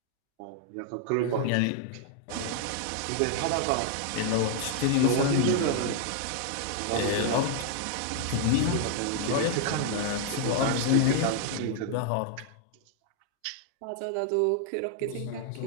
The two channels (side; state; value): both; different; correlation 0.00